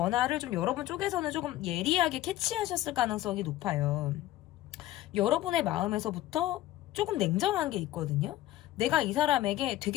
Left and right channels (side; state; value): right; quieter; 14.9 dB